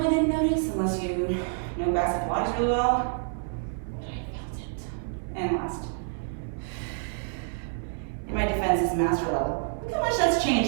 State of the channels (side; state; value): left; silent; 59 dB below the other